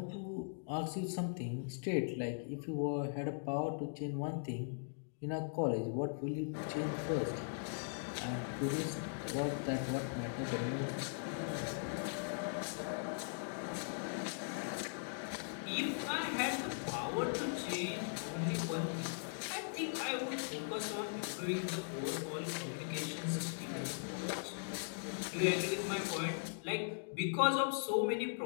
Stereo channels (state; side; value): silent; right; digital silence